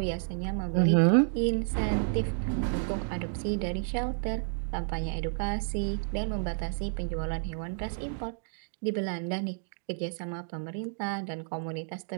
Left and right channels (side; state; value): left; silent; digital silence